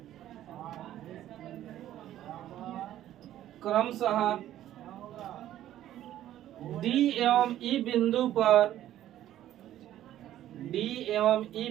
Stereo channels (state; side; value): quieter; left; 12.6 dB